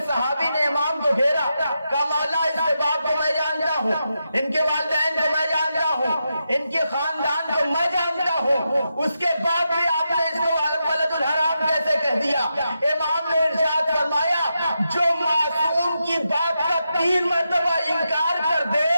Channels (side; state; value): both; inverted; correlation -0.86